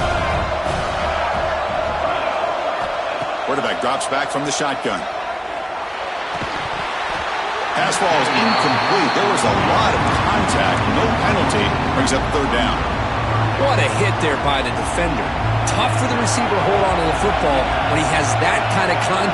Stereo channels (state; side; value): identical; both; correlation 1.00